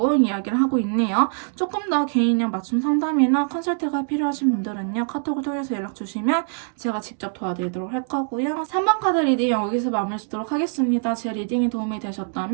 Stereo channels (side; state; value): left; silent; 57 dB below the other